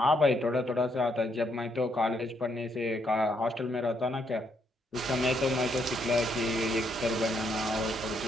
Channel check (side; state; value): both; normal; correlation 0.74